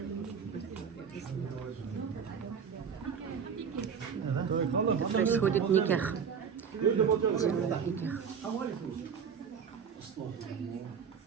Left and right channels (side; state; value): left; quieter; 6.8 dB